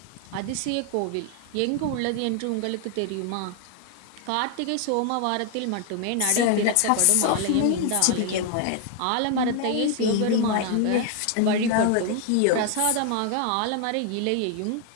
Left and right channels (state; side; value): different; both; correlation 0.01